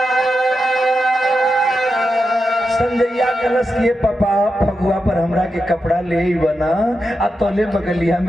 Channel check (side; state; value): both; normal; correlation 0.88